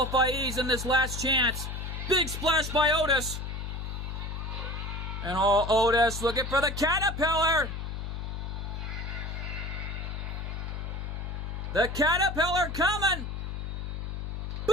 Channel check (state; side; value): noise; left; hum, 5 dB below the sound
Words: in this last chance. Big splash by Otis. And Otis looking for the Caterpillar. The Caterpillar coming.